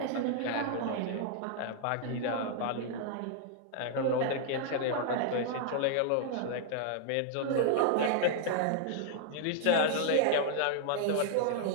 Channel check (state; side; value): different; both; correlation 0.00